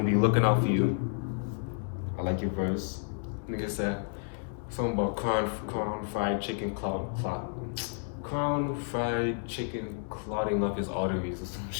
be looking out for you. I like your verse. Nigga said something about crown fried chicken clotting up his arteries or some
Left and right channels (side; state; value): right; silent; digital silence